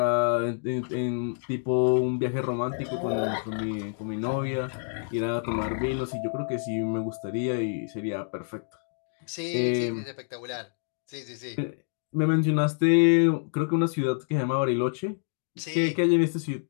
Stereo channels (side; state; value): right; silent; digital silence